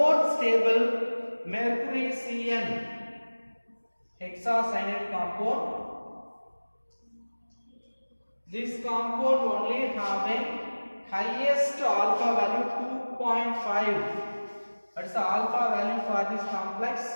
stable mercury CN hexacyanide compound. This compound only having highest alpha value 2.5. That is the alpha value for this complex.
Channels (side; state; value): both; inverted; correlation -1.00